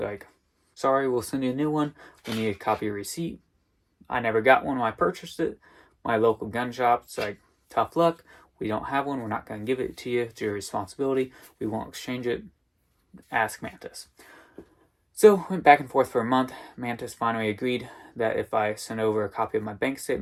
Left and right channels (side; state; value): both; identical; correlation 1.00